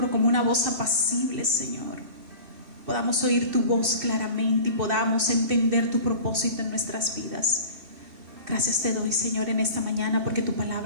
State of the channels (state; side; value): late; left; 2.7 ms